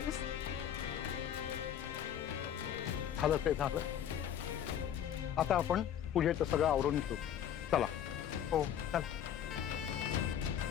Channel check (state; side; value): quieter; right; 9.7 dB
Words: झालं ते झालं. आता आपण पूजेचं सगळं आवरून घेऊ. चला. हो, चल.